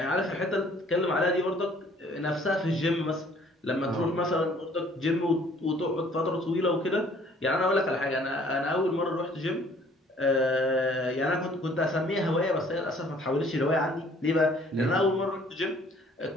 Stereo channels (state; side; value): normal; both; correlation 0.58